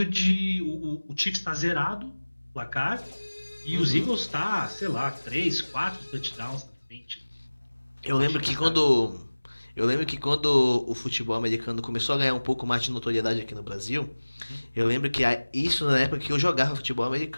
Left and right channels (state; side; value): inverted; both; correlation -1.00